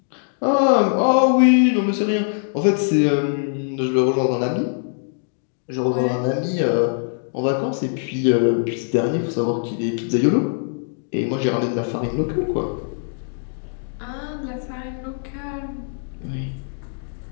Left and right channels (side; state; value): right; silent; digital silence